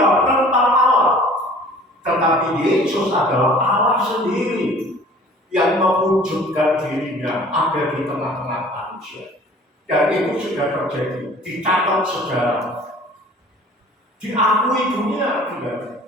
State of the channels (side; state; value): both; normal; correlation 0.49